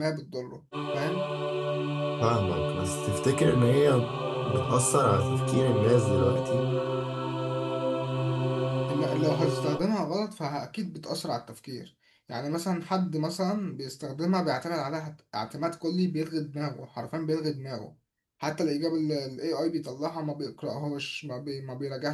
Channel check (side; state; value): both; identical; correlation 1.00